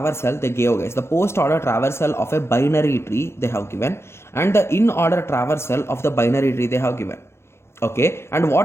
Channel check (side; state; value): right; late; 0.12 ms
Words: they gave, guys, the post order traversal of a binary tree they have given, and the in order traversal of the binary tree they have given. Okay, and